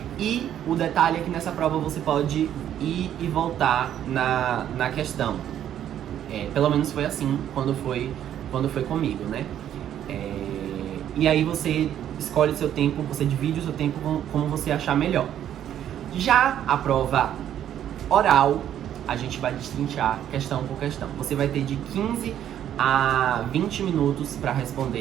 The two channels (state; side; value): quieter; left; 10.6 dB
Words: E o detalhe é que nessa prova você pode ir e voltar na questão. Pelo menos foi assim quando foi comigo, né? E aí você escolhe o seu tempo, você divide o seu tempo como você achar melhor. Já a prova oral, a gente vai destrinchar questão por questão. Você vai ter de 15 a 20 minutos para